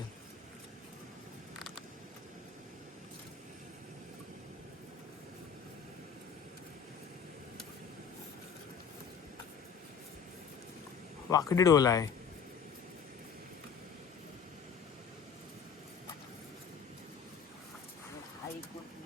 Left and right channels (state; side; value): quieter; right; 6.6 dB